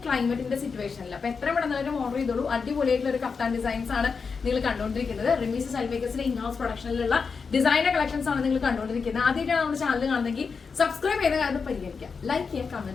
ക്ലൈമറ്റിന്റെ സിറ്റുവേഷനിൽ. അപ്പൊ എത്ര പെട്ടെന്ന് ഓർഡർ ചെയ്തോളൂ. അടിപൊളിയായിട്ടുള്ള ഒരു കഫ്താൻ ഡിസൈൻസ് ആണ് നിങ്ങൾ കണ്ടുകൊണ്ടിരിക്കുന്നത്. റിമീസ് സെൽമേക്കേഴ്സിന്റെ ഇൻഹൗസ് പ്രൊഡക്ഷനിലുള്ള ഡിസൈനർ കളക്ഷൻസ് ആണ് നിങ്ങൾ കണ്ടുകൊണ്ടിരിക്കുന്നത്. ആദ്യമായിട്ടാണ് നമ്മുടെ ചാനൽ കാണുന്നെങ്കിൽ സബ്സ്ക്രൈബ് ചെയ്ത കാര്യം പരിഗണിക്കുക, ലൈക്ക് ചെയ്യുക,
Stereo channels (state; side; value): quieter; right; 5.3 dB